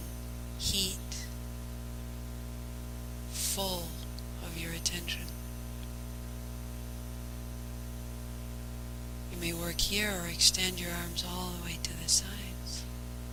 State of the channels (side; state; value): both; identical; correlation 1.00